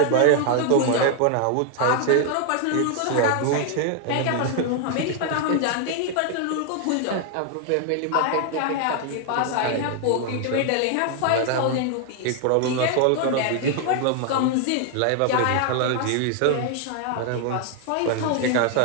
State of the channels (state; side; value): different; both; correlation 0.00